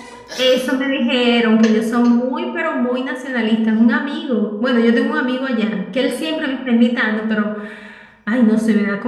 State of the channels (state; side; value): identical; both; correlation 1.00